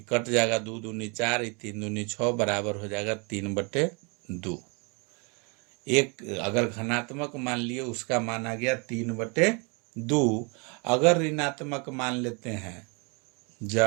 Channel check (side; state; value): left; quieter; 32.4 dB